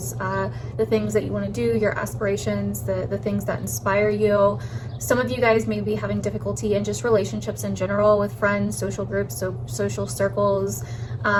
the things that you want to do, your aspirations, the things that inspire you. Some of you guys may be having difficulty in just relationships in general with friends, social groups, so social circles,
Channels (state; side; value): identical; both; correlation 1.00